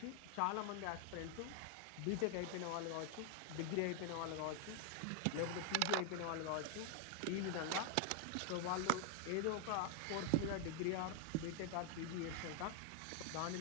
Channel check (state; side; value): different; both; correlation 0.00